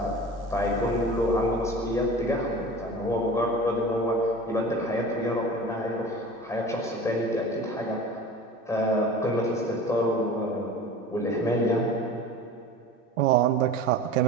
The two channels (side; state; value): both; normal; correlation 0.38